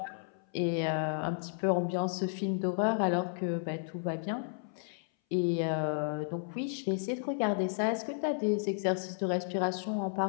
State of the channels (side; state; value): right; silent; 56 dB below the other